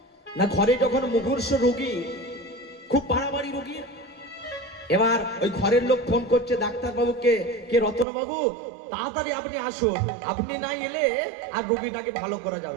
না, ঘরে যখন মুমূর্ষ রোগী, খুব বাড়াবাড়ি রোগী, এবার ওই ঘরের লোক ফোন করছে ডাক্তার বাবুকে, কে রতন বাবু তাড়াতাড়ি আপনি আসুন, আপনি না এলে আর রোগীটাকে ভালো করা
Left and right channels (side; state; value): left; drops out; at 8.1 s